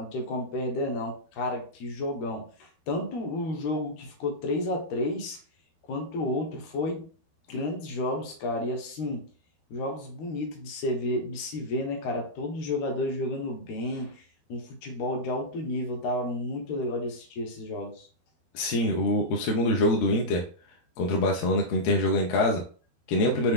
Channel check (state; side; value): late; right; 13 ms